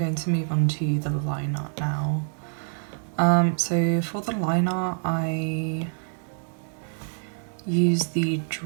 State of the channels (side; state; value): left; silent; 55 dB below the other